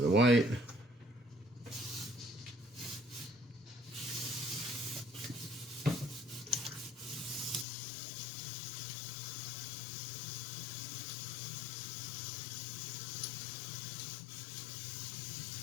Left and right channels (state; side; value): drops out; right; at 7.7 s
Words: of the white.